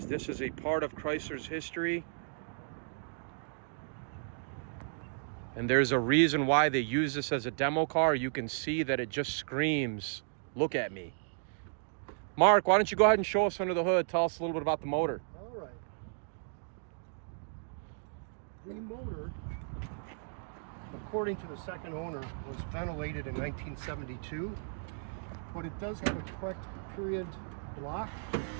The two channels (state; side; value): silent; left; digital silence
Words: This is a part of Chrysler's history. And there's a reason why they use this as a demo car. You can see that it just screams, look at me. Mark, why don't you go ahead and show us under the hood. Tell us a little bit about the motor. All right. The motor, according to the second owner, was ventilated in 1972, but it does have a correct period block,